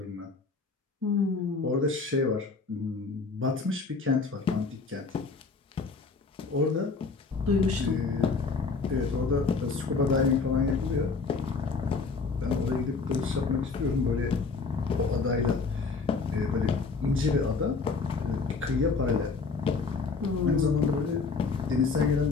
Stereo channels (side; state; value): right; quieter; 4.4 dB